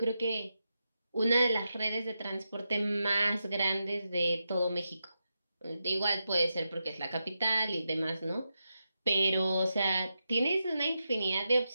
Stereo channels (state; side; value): inverted; both; correlation -0.88